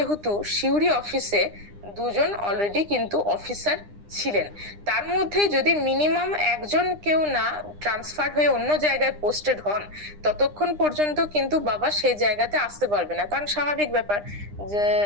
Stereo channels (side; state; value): left; late; 9.9 ms